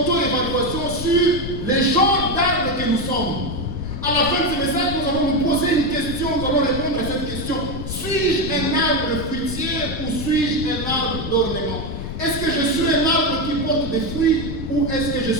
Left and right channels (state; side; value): noise; left; rumble, 7 dB below the sound